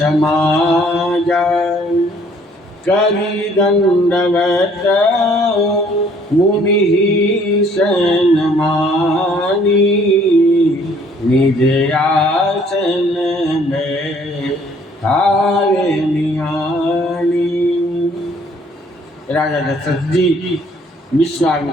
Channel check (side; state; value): both; normal; correlation 0.60